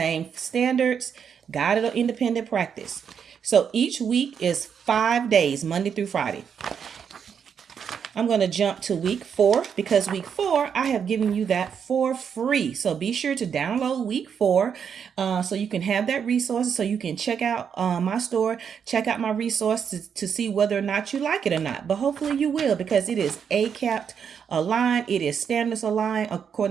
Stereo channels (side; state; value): left; quieter; 7.3 dB